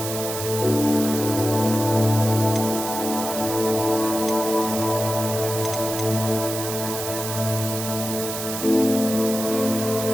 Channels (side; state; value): right; noise; hiss, 6 dB below the sound